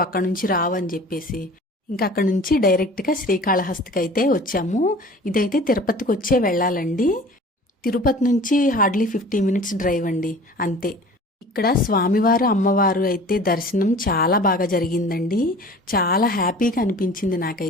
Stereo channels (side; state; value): both; normal; correlation 0.44